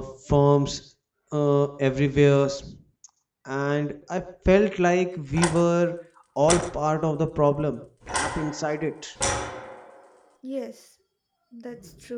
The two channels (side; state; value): both; identical; correlation 1.00